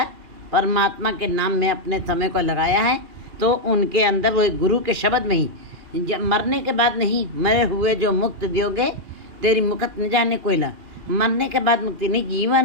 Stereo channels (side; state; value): left; late; 2.4 ms